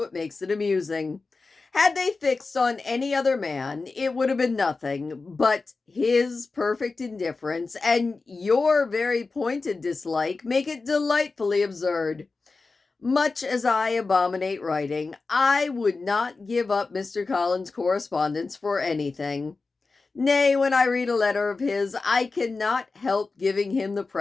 makes it amusing. Had they fixed on any other man, it would have been nothing, but his perfect indifference and your very pointed dislike make it delightfully absurd. Much as I abominate writing, I would not give up Mr. Collins' correspondence for anything. Nay, when I read a letter of his, I cannot help giving him the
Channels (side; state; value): right; quieter; 4.0 dB